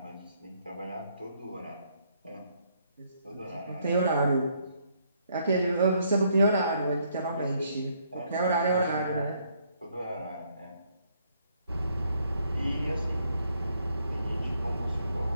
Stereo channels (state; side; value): inverted; both; correlation -0.70